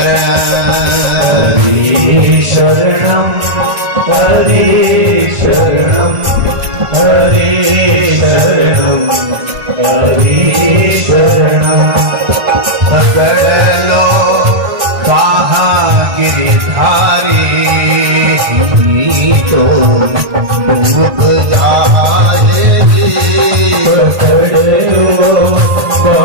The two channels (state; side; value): late; left; 1.5 ms